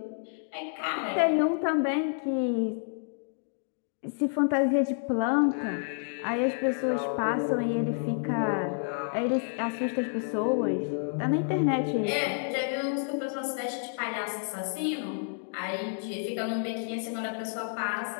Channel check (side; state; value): right; silent; digital silence